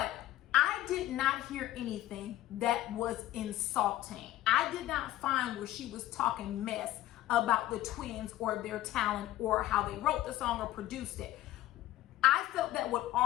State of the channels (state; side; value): quieter; right; 14.8 dB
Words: I did not hear anything that was insulting. I did not find where she was talking mess about the twins or their talent or how they wrote the song or produced it. I felt that what